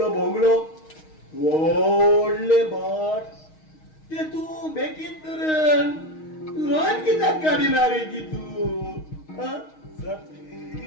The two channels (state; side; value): late; right; 6.4 ms